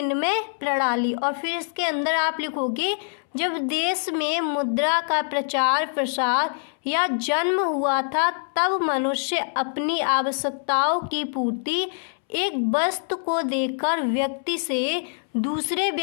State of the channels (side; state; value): right; silent; 62 dB below the other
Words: प्रणाली, और फिर इसके अंदर आप लिखोगे जब देश में मुद्रा का प्रचार प्रसार या जन्म हुआ था तब मनुष्य अपनी आवश्यकताओं की पूर्ति एक वस्तु को देकर व्यक्ति से दूसरे